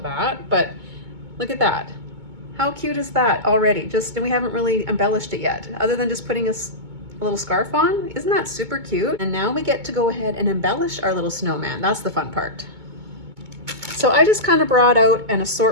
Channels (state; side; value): late; left; 2.2 ms